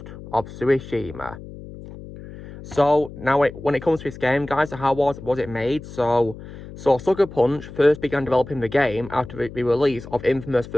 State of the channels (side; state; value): left; noise; hum, 14 dB below the sound